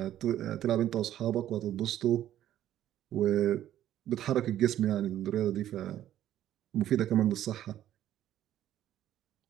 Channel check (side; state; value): left; quieter; 12.1 dB